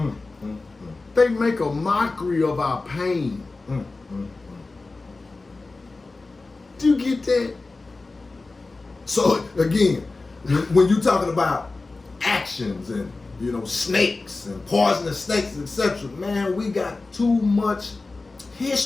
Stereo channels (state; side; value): quieter; right; 3.5 dB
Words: They make a mockery of our pain. Do you get that? So again, when you're talking about actions and snakes and poisonous snakes, etc., man, we got too much